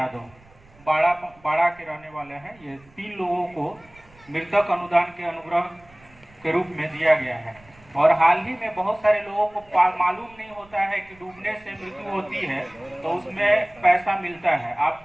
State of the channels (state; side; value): noise; right; rumble, 27 dB below the sound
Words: बाड़ा के रहने वाले हैं। ये 3 लोगों को मृतक अनुदान के अनुग्रह के रूप में दिया गया है। और हाल ही में बहुत सारे लोगों को मालूम नहीं होता है कि डूबने से मृत्यु होती है तो उसमें पैसा मिलता है।